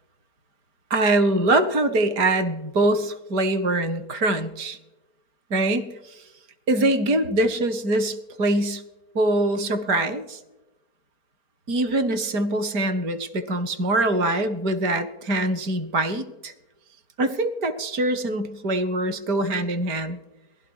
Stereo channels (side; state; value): left; late; 4.4 ms